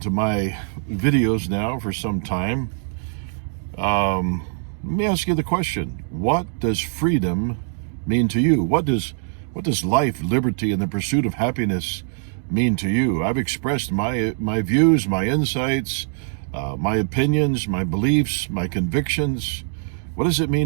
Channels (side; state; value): left; silent; 61 dB below the other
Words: to my videos now for some time, let me ask you the question: what does freedom mean to you? What does life, liberty, and the pursuit of happiness mean to you? I've expressed my views, my insights, my opinions, my beliefs, my convictions. What does it